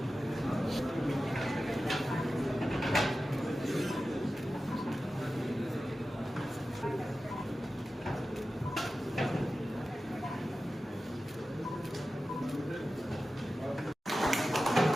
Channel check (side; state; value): both; normal; correlation 0.94